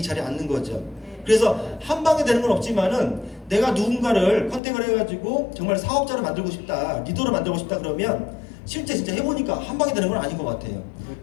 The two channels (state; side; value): drops out; right; at 4.6 s